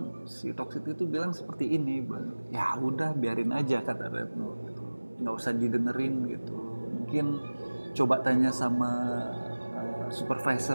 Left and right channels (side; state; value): both; inverted; correlation -1.00